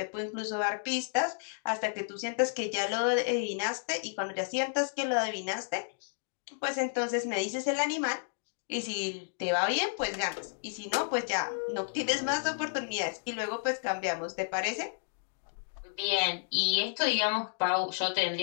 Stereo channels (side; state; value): right; silent; digital silence